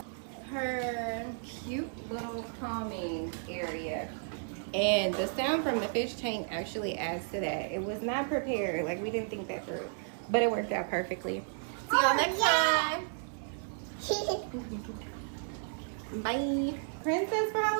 Her cute little calming area. And the sound from the fish tank actually adds to that. It was not prepared. Like, we didn't think that through. But it worked out perfectly. See y'all next time. Bye. Princess for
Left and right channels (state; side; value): silent; left; 56 dB below the other